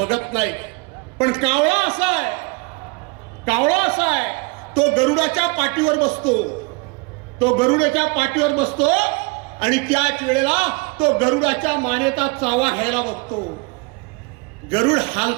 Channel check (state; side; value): quieter; left; 28.3 dB